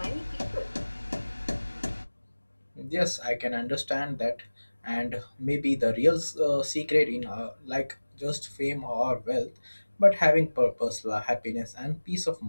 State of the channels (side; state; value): both; inverted; correlation -1.00